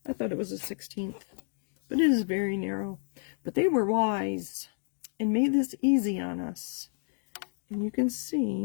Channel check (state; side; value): silent; right; 56 dB below the other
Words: I thought it was a 1/16, but it is very narrow. But they were wise and made this easy on us. And you can